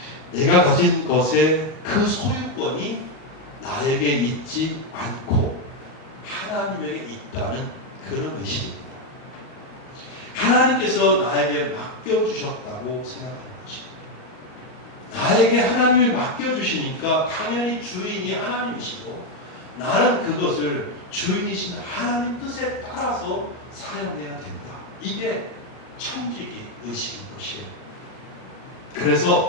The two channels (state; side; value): late; right; 38 ms